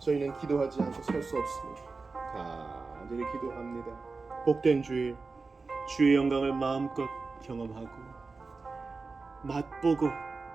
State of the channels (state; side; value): quieter; left; 4.1 dB